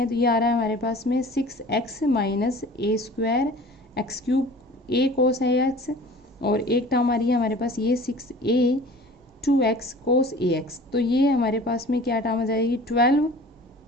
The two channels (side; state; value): both; normal; correlation 0.44